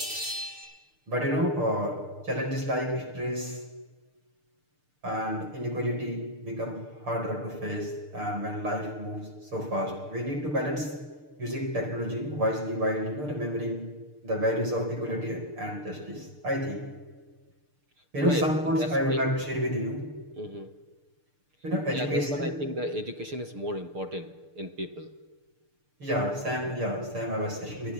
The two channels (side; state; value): left; late; 6.7 ms